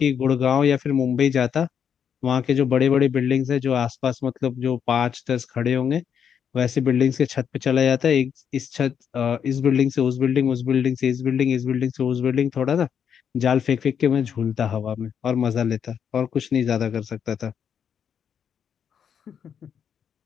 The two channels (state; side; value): quieter; right; 7.9 dB